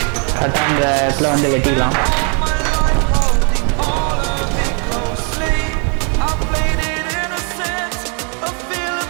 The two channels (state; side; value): quieter; left; 38.1 dB